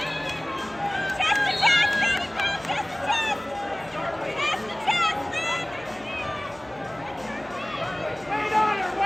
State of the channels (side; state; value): left; noise; hum, 25 dB below the sound